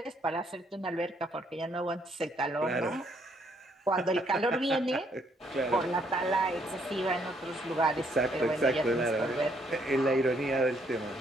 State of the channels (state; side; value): normal; both; correlation 0.70